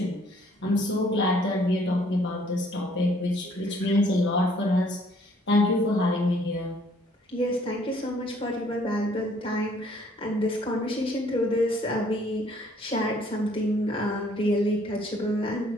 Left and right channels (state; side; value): normal; both; correlation 0.62